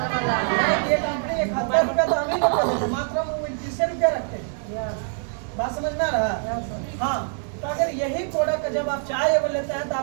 ये कंपनी 71 रुपया तो हम ही लोग देते हैं, मात्र हम 29 रुपया रखते हैं। बात समझ में आ रहा है? हाँ, तो अगर यही प्रोडक्ट जब आप चाय अगर लेते हैं तो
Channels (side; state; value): left; silent; 58 dB below the other